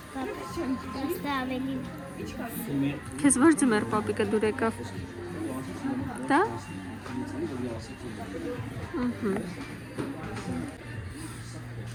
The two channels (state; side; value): identical; both; correlation 1.00